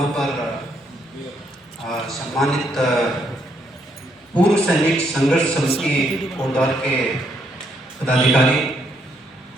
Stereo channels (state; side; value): normal; both; correlation 0.74